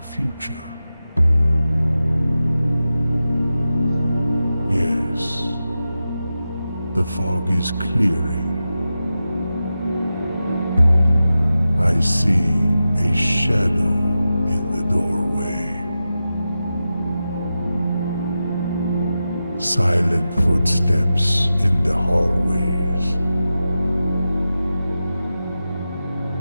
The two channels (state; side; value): inverted; both; correlation -0.92